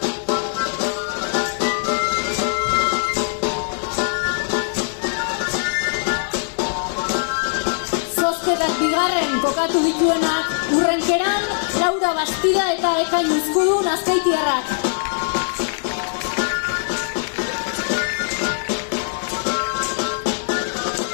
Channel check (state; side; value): silent; right; 65 dB below the other